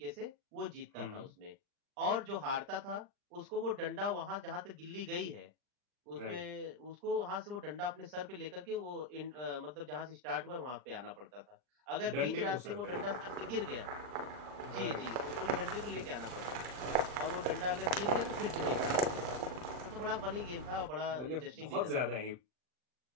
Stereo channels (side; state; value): left; late; 39 ms